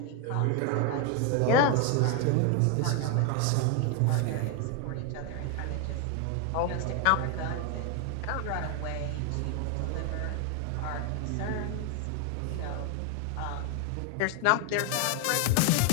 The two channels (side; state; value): both; different; correlation 0.01